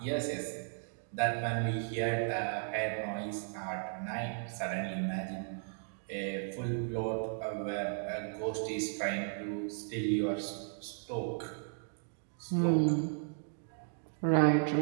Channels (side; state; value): left; silent; digital silence